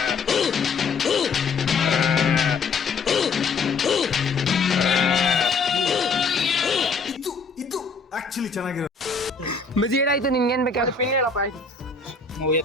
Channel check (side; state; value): right; quieter; 4.5 dB